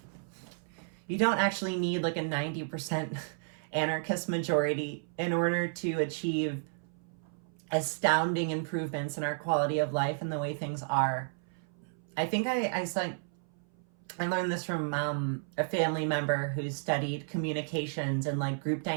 you don't actually need, like, a 90% anarchist majority in order to achieve astounding improvements in our quality of life and the way things are. I think I learned this from a family member who studied communications and like group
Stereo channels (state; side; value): silent; left; 56 dB below the other